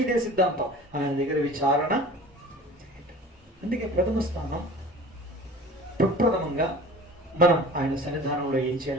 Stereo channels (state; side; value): normal; both; correlation 0.42